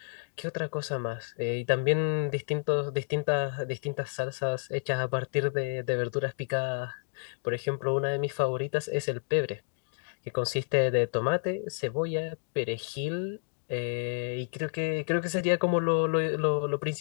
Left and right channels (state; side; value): silent; right; digital silence